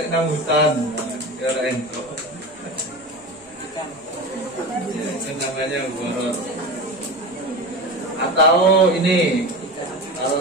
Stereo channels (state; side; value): normal; both; correlation 0.27